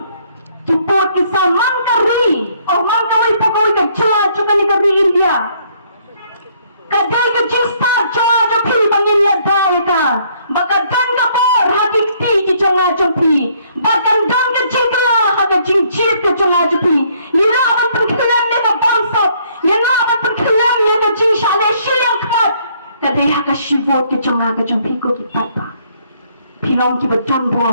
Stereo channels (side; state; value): both; inverted; correlation -0.65